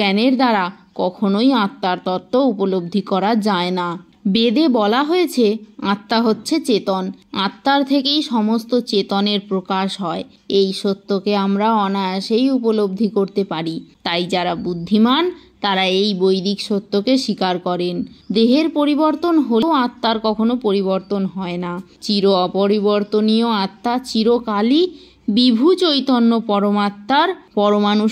দ্বারা কখনোই আত্মার তত্ত্ব উপলব্ধি করা যায় না। বেদে বলা হয়েছে আত্মা হচ্ছে চেতন, আত্মার থেকেই সমস্ত চেতনের প্রকাশ হয়। এই সত্যকে আমরা অনায়াসেই উপলব্ধি করতে পারি। তাই যারা বুদ্ধিমান তারা এই বৈদিক সত্যকে স্বীকার করেন। দেহের পরিবর্তন হলেও আত্মার কখনো পরিবর্তন হয় না। চির অপরিবর্তনীয় আত্মা চিরকালই বিভু চৈতন্য পরমাত্মার পরমাণু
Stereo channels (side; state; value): both; identical; correlation 1.00